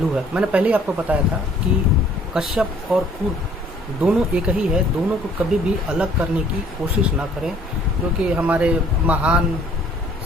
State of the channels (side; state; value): both; normal; correlation 0.58